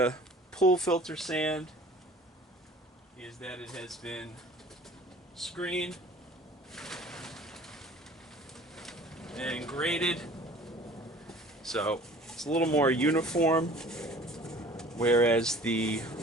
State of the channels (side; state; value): both; normal; correlation 0.47